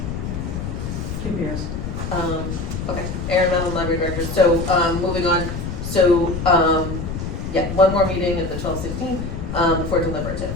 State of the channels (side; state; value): left; noise; rumble, 5 dB below the sound